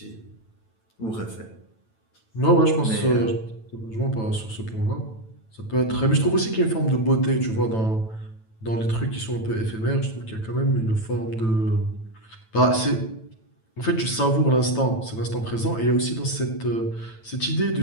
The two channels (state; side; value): late; right; 9.1 ms